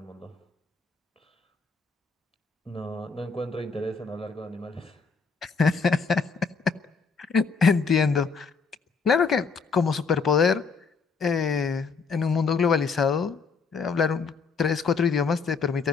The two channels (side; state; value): right; quieter; 5.0 dB